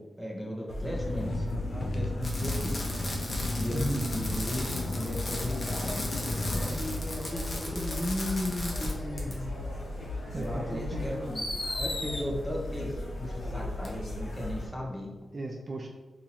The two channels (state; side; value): normal; both; correlation 0.91